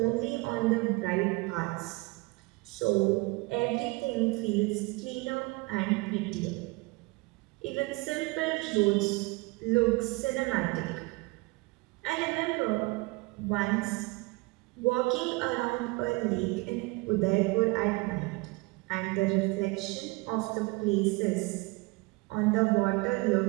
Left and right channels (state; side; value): quieter; left; 25.2 dB